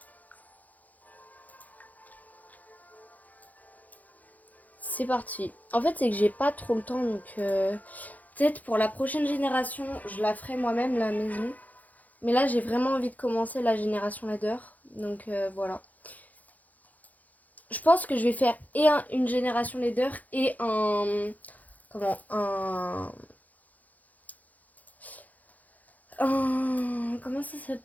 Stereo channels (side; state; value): right; late; 0.079 ms